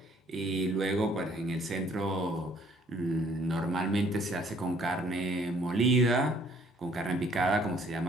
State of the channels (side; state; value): both; normal; correlation 0.60